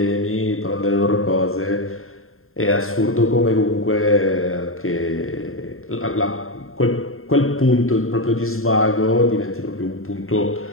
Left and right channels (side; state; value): right; late; 0.61 ms